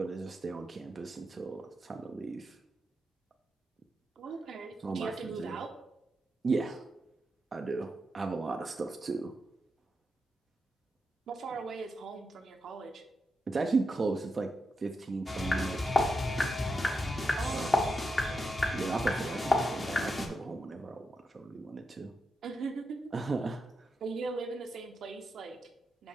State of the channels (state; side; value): normal; both; correlation 0.86